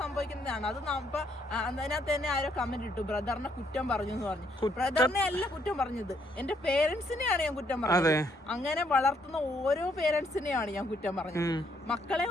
അത് അതിനകത്ത് തന്നെ ആരോ കമന്റ് ഇട്ടു, ബ്രദറിനെ കുറ്റം പറഞ്ഞു എന്ന് പറഞ്ഞു. ബ്രദറിനെ അല്ല കുറ്റം പറഞ്ഞത്, എന്റെ പേരൻസിനെയാണ് ഞാൻ കുറ്റം പറഞ്ഞത്. അങ്ങനെ വളർത്തുന്ന ഓരോ പേരൻസിനെയാണ് ഞാൻ കുറ്റം പറഞ്ഞത്. മക്കളെ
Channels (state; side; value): normal; both; correlation 0.71